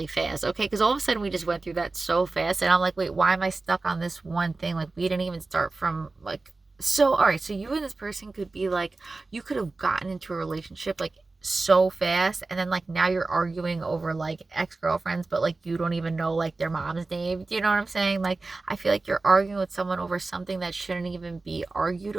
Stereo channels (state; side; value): quieter; left; 3.5 dB